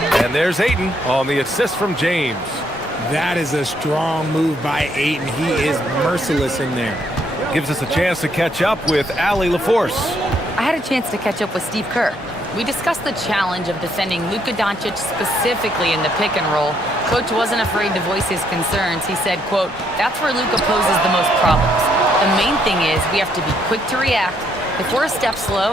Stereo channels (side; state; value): both; normal; correlation 0.72